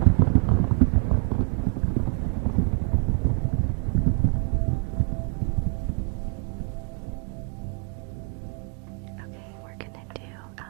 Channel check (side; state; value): left; quieter; 34.1 dB